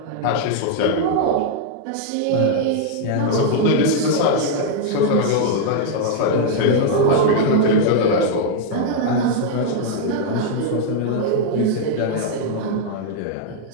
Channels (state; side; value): different; both; correlation -0.01